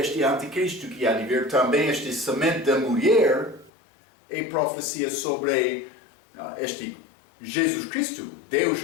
anticristo que há de vir. Também este semente da mulher é profecia sobre este Jesus Cristo, Deus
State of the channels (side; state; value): right; drops out; at 3.7 s